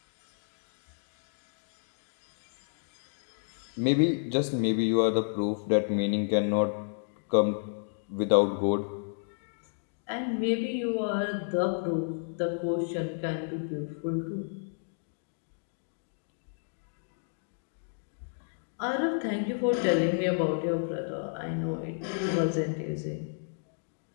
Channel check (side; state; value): right; silent; digital silence